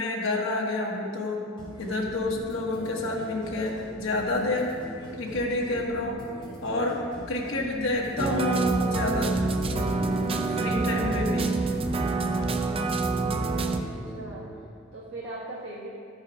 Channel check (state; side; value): normal; both; correlation 0.42